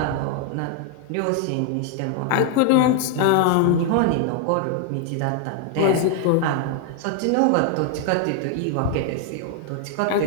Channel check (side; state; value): both; different; correlation 0.01